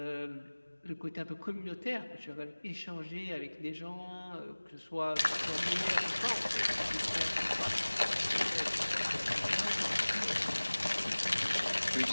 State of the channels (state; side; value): inverted; both; correlation -1.00